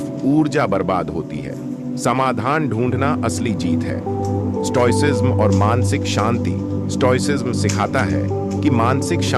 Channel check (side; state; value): both; identical; correlation 1.00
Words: ऊर्जा बर्बाद होती है। समाधान ढूंढना असली जीत है। स्टोइसिज्म और मानसिक शांति। स्टोइसिज्म सिखाता है कि मानसिक